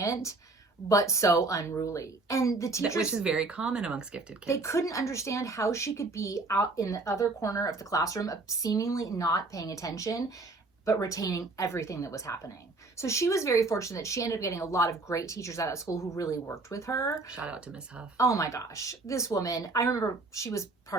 but so unruly. And the teachers, which is very common amongst gifted kids. They couldn't understand how she could be out in the other corner of the classroom, seemingly not paying attention, but retaining everything that was happening. So she was very fortunate. She ended up getting a lot of great teachers out at school who really worked with her. Shout out to Miss Huff. Oh my gosh. This woman, I remember she was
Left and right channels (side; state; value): left; quieter; 3.4 dB